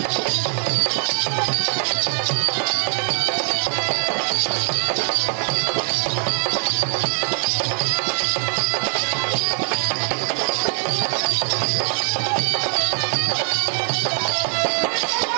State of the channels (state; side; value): silent; left; digital silence